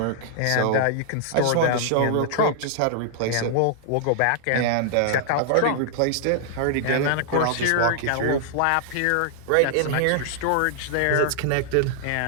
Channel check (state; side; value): different; both; correlation -0.01